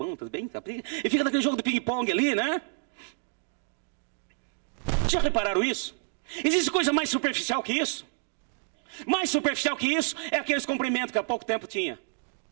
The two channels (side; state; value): left; silent; digital silence